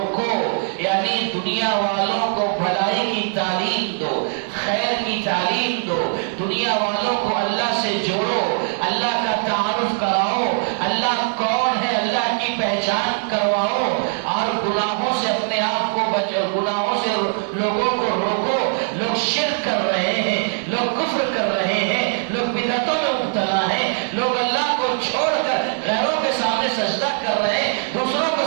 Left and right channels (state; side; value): silent; left; 61 dB below the other